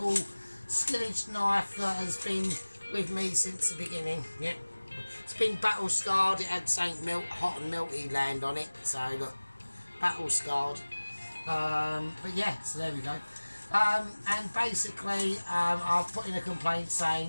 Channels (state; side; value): inverted; both; correlation -1.00